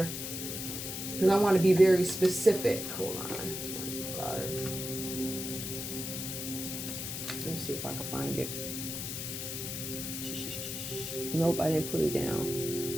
because I want to be very specific. Hold on. Let me see if I can find it. Nope, I didn't put it down.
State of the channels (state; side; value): noise; left; hiss, 5 dB below the sound